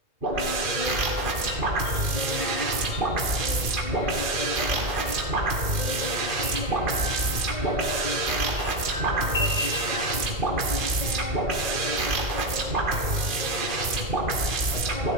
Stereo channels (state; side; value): late; left; 2.4 ms